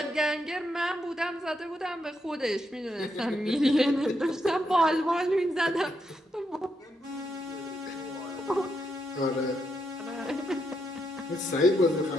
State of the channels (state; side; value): normal; both; correlation 0.80